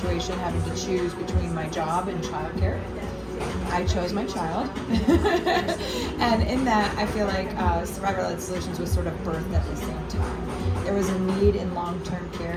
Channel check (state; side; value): identical; both; correlation 1.00